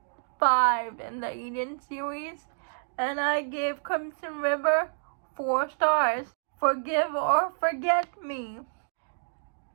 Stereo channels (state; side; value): silent; left; 59 dB below the other